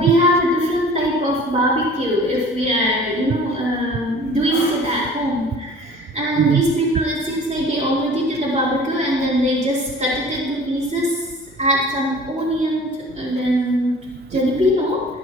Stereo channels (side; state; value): both; normal; correlation 0.46